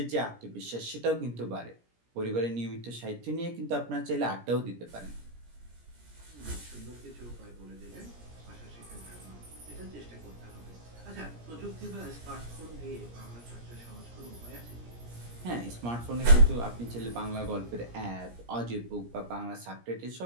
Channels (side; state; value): left; late; 17 ms